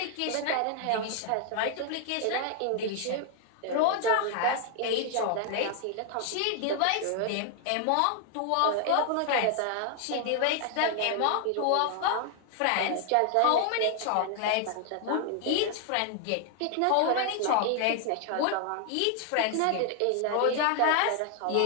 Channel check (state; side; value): different; both; correlation 0.00